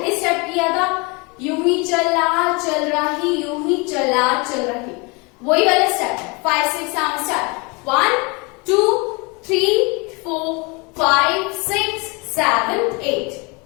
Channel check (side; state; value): right; quieter; 29.0 dB